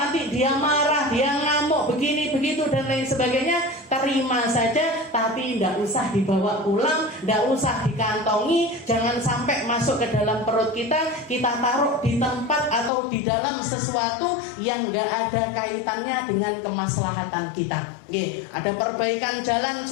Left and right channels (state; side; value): drops out; right; at 12.9 s